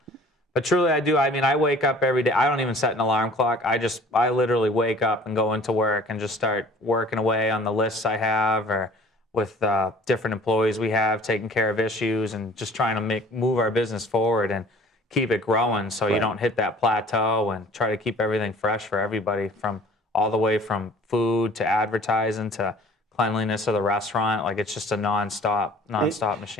But truly, I do. I mean, I wake up every day. I don't even set an alarm clock. I literally wake up and go into work and just start working away on the lists I have or with different employees we have, taking care of issues and just trying to move our business forward and keep it growing so you don't hit that plateau, and try to keep everything fresh for everybody, from all the way from food to advertising to cleanliness of the restaurant. Like it's just a nonstop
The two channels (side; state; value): both; normal; correlation 0.49